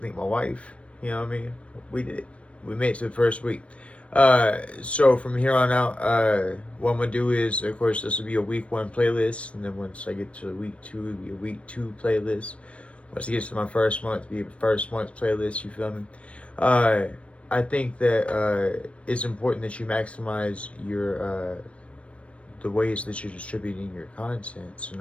thank my wife. You know what I mean? We did it. We made it to the first week. So from here on out, what I'm gonna do is, of course, this will be a week 1 playlist, and then once I get to week 2, it'll be a week 2 playlist. Once it gets to my first month, it'll be a first month playlist. You feel me? Uh, I think that it's important that you maximize your the ways that you're distributing your content. So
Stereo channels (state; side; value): late; right; 0.062 ms